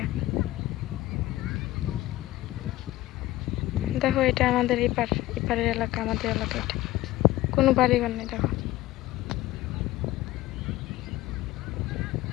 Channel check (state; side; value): quieter; right; 16.6 dB